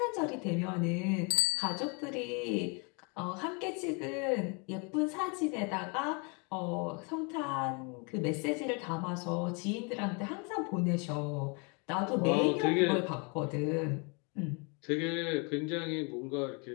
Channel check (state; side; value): quieter; right; 33.2 dB